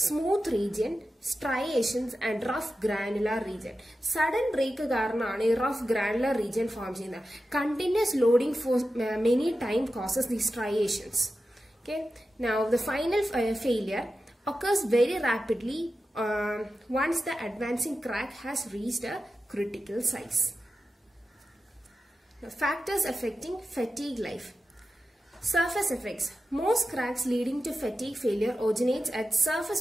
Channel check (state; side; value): normal; both; correlation 0.92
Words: Smooth region, striations and rough granular region. Sudden break കാരണമാണ് ഈ rough granular region form ചെയ്യുന്നത്. Continuous loading for many time causes these striations. Okay. Now the final failure occurs very rapidly once the advancing crack has reached a critical size. Now, factors affecting fatigue life. Surface effects. Most cracks leading to fatigue failure originates at surface